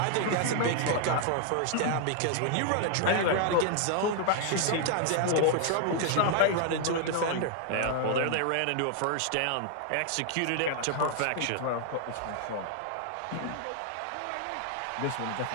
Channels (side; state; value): both; different; correlation 0.00